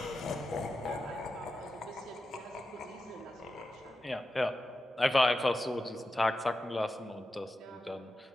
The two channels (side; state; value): both; normal; correlation 0.91